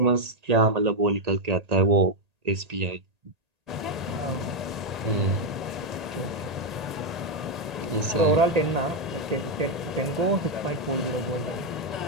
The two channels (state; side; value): late; left; 1.8 ms